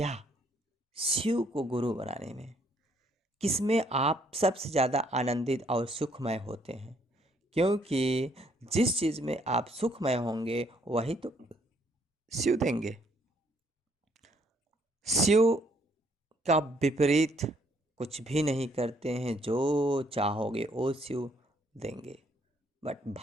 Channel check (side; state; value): both; normal; correlation 0.68